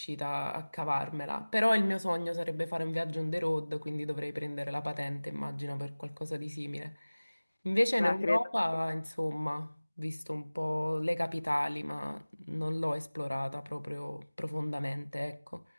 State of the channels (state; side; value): inverted; both; correlation -1.00